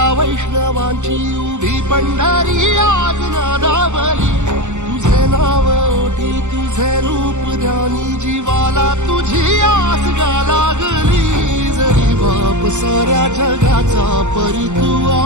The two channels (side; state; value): left; late; 0.84 ms